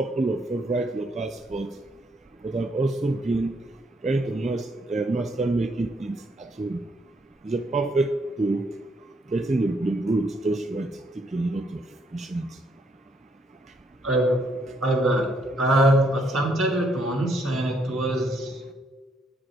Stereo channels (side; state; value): both; normal; correlation 0.72